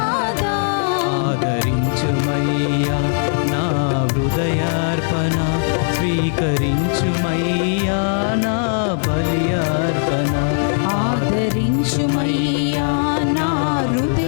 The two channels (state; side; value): silent; right; 67 dB below the other